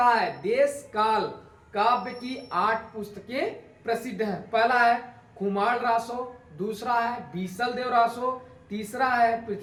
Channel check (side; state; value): both; identical; correlation 1.00